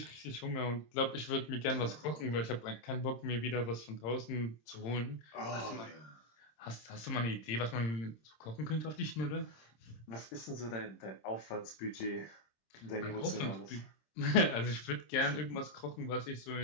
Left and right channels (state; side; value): late; right; 26 ms